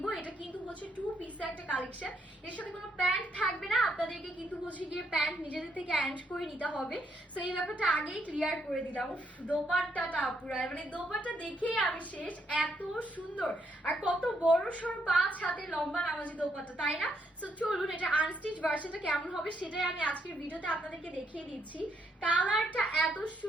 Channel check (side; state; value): both; normal; correlation 0.75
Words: এটা কিন্তু হচ্ছে টু পিসের একটা কালেকশন, এর সাথে কোনো প্যান্ট থাকবে না, আপনাদেরকে কিন্তু হচ্ছে গিয়ে প্যান্ট নিজেদের থেকে অ্যাড করে নিতে হবে। সো এই ব্যাপারটা আগেই ক্লিয়ার করে দিলাম। দোপাট্টাটা পুরো মানে দোপাট্টা দেখেই আমি শেষ, এত সুন্দর আর কত বড় সড় 5 হাতে লম্বা নামাজি দোপাট্টা, তাই না? সো চলুন এটা আনস্টিচ ভার্সনটা কেমন হবে সেটাই আমি আজকের ভিডিওতে আপনাদেরকে দেখিয়ে দিচ্ছি। কালারটা এত